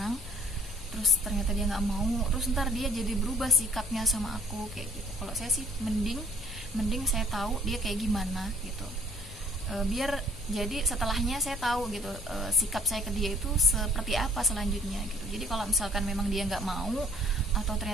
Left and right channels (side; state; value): left; noise; hum, 17 dB below the sound